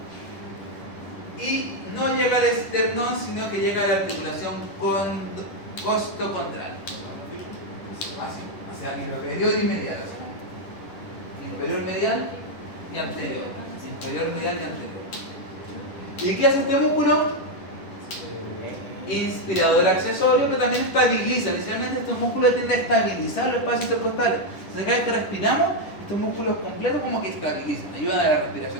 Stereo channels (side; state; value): right; late; 10 ms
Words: y no llega al esternón, sino que llega a la articulación costo-contraria. Así, hacia inferior y medial. Inferior, medial y anterior. Inferior, medial y anterior. ¿Y qué hace este músculo? Inspirador accesorio, pero también estabiliza. Inicialmente estos músculos tienden a estabilizar los espacios intercostales. Entonces cada vez que respiramos, estos músculos completos como que estabilizan, ayudan a la